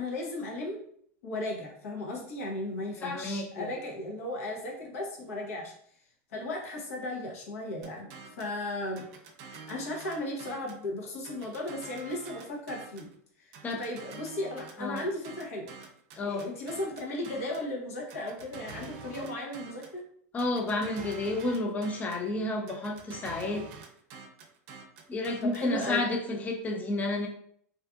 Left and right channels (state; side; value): normal; both; correlation 0.35